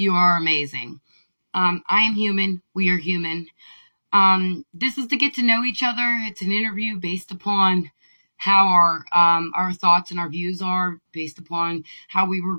are amazing. I am human. We are human. This is to get to know each other. It's an interview based upon how our thoughts and our views are based upon how we were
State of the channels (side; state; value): both; inverted; correlation -1.00